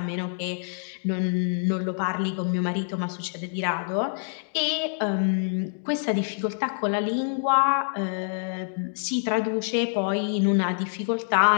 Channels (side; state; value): right; silent; digital silence